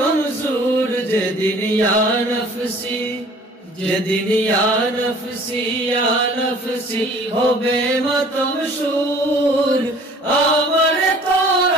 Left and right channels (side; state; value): both; normal; correlation 0.51